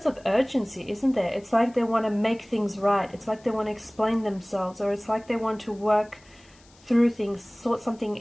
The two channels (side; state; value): left; noise; hiss, 28 dB below the sound